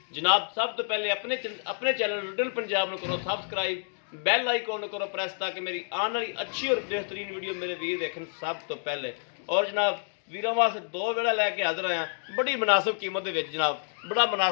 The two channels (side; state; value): right; silent; digital silence